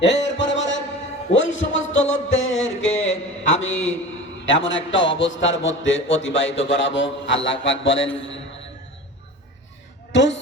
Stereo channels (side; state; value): both; normal; correlation 0.35